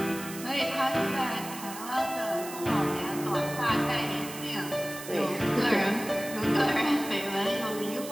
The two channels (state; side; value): noise; right; hiss, 12 dB below the sound